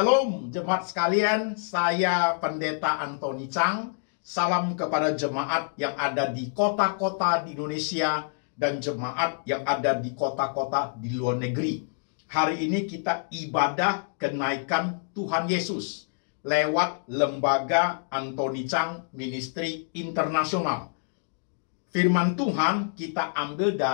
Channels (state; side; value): silent; right; digital silence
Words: jemaat sekalian, saya Pendeta Antoni Chang. Salam kepada jemaat yang ada di kota-kota di Indonesia dan jemaat yang ada di kota-kota di luar negeri. Hari ini kita ibadah kenaikan Tuhan Yesus lewat lembaga Antoni Chang Ministry Internasional. Firman Tuhan kita ambil